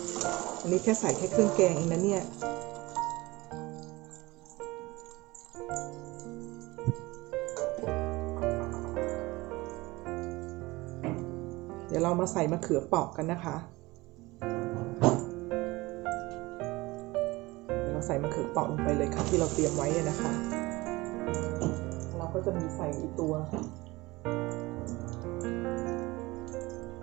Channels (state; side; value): quieter; left; 21.4 dB